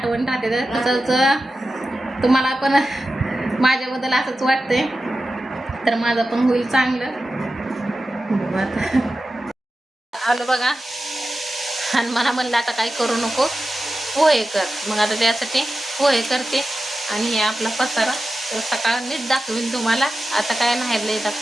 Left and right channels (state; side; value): normal; both; correlation 0.93